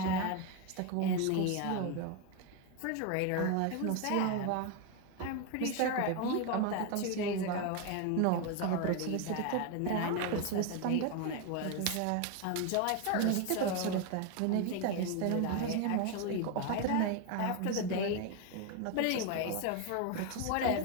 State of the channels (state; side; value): different; both; correlation 0.01